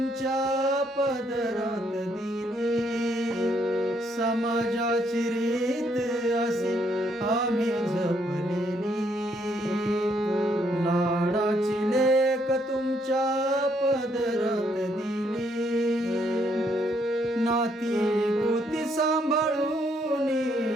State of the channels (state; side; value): normal; both; correlation 0.71